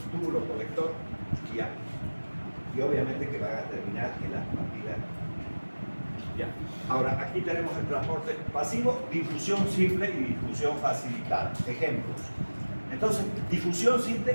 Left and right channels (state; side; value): inverted; both; correlation -1.00